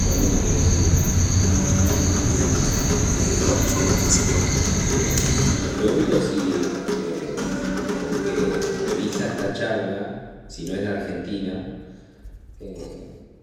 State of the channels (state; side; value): identical; both; correlation 1.00